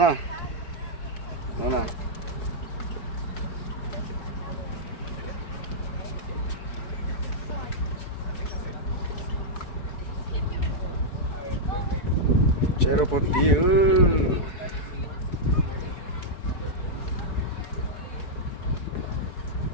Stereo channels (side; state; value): right; late; 4.6 ms